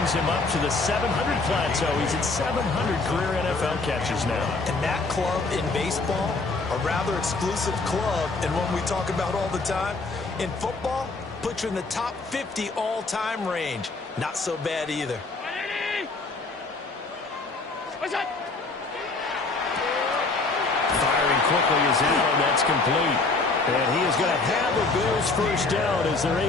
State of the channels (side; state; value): right; quieter; 3.6 dB